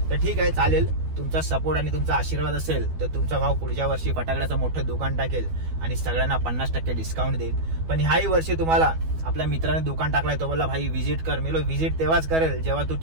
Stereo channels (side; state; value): left; late; 12 ms